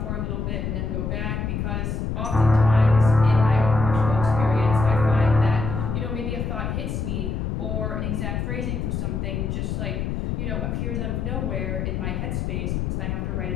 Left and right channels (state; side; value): noise; left; rumble, 2 dB below the sound